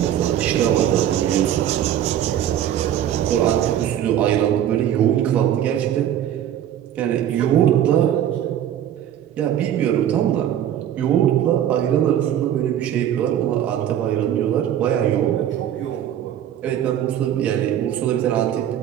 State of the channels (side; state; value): left; quieter; 10.8 dB